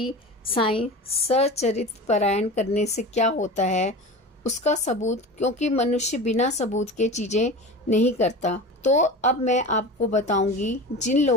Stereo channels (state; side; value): normal; both; correlation 0.31